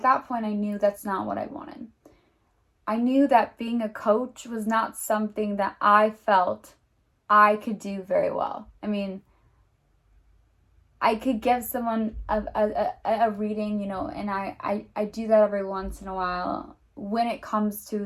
that point I knew that's not what I wanted. I knew that being a coach was not something that I felt I could do very well. I mean, I could give someone a reading, and I do that every once in a while when it comes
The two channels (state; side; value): identical; both; correlation 1.00